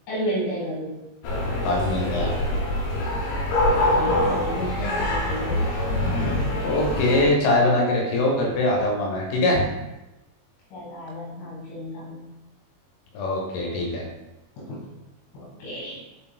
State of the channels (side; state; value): right; late; 21 ms